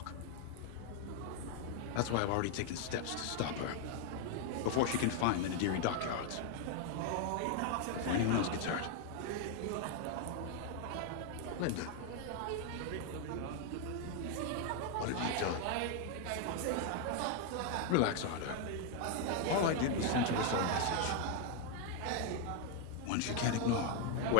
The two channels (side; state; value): both; different; correlation 0.00